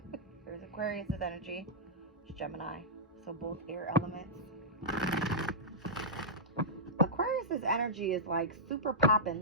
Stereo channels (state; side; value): normal; both; correlation -0.13